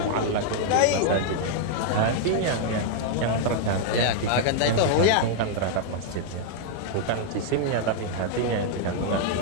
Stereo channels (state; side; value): different; both; correlation 0.00